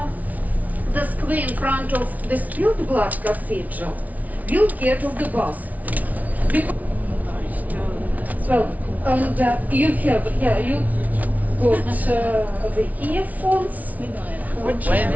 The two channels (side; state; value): left; late; 0.073 ms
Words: the square in front of the Spilled Blood Cathedral, we'll get off the bus. Well, and you have, you got the earphones.